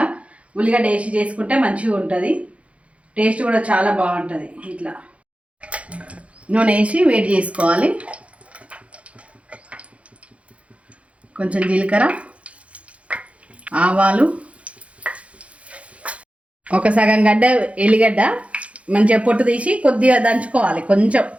ఉల్లిగడ్డ వేసి చేసుకుంటే మంచిగా ఉంటుంది. టేస్ట్ కూడా చాలా బాగుంటుంది. ఇట్లా నూనె వేసి వేడి చేసుకోవాలి. కొంచెం జీలకర్ర, ఆవాలు, ఒక సగం గడ్డ ఎల్లిగడ్డ మంచిగా పొట్టు తీసి కొద్దిగా దంచుకోవాలి. కొంచెం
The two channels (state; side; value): late; left; 0.063 ms